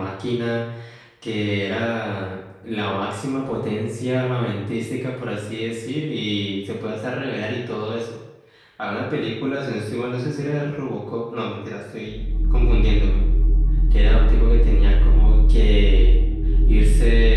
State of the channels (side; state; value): both; identical; correlation 1.00